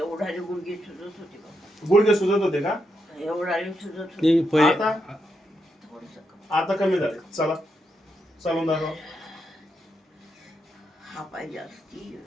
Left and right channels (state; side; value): normal; both; correlation 0.82